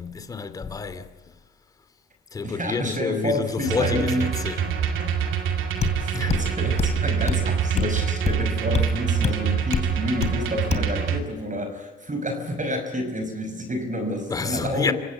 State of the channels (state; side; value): normal; both; correlation 0.51